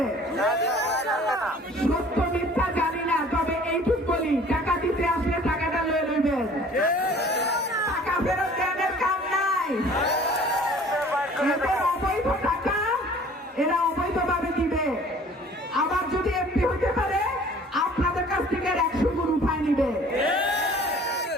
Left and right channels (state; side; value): normal; both; correlation 0.50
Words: সত্য মিথ্যা জানি না, তবে এইটুক বলি, টাকা দিতে আসলে টাকাটা লয়ে লইবেন, টাকা ফেরত দেওয়ার কাম নাই। এদের অবৈধ টাকা এরা অবৈধভাবে দিবে। আবার যদি এমপি হতে পারে আপনাদের কাছ থেকে 100 গুণ উঠায় নিবে।